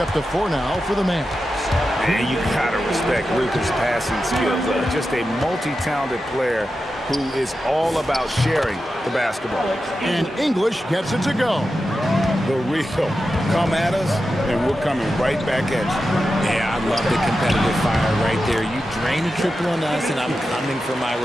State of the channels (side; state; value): both; normal; correlation 0.91